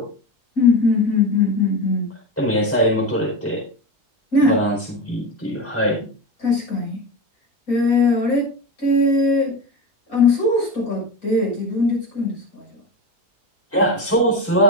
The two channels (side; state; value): both; normal; correlation 0.22